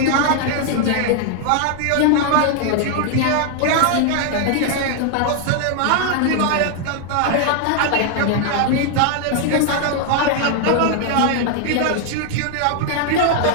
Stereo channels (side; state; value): both; different; correlation 0.00